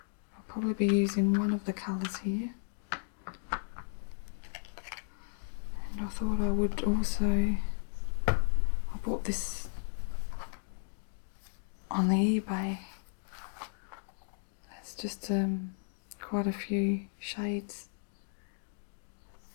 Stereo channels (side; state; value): right; silent; digital silence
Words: I'll probably be using one of the colours here. And I thought I would also, I bought this on the eBay. It's just quite a few shades